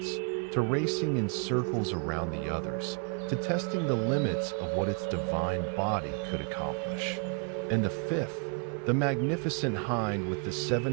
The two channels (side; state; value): left; quieter; 39.1 dB